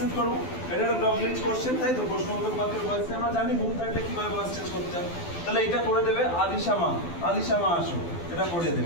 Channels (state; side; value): late; right; 12 ms